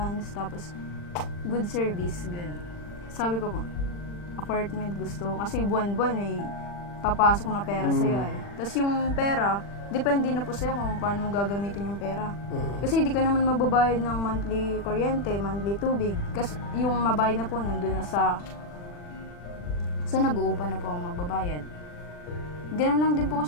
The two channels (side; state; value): right; late; 40 ms